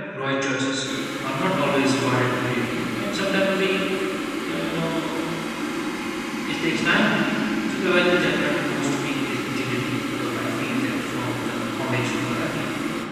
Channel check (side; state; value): both; identical; correlation 1.00